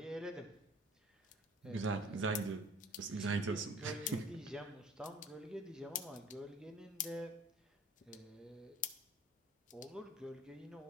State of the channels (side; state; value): both; normal; correlation 0.49